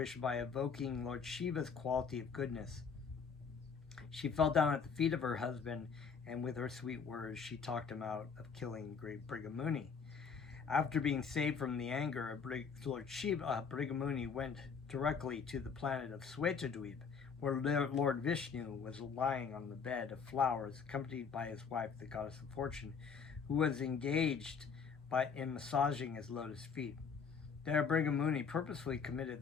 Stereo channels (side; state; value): right; quieter; 5.9 dB